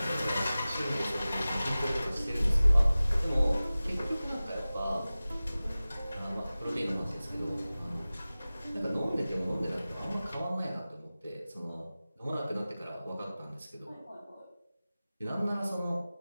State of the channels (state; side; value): inverted; both; correlation -0.97